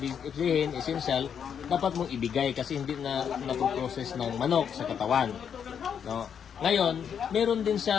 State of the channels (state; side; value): quieter; right; 7.8 dB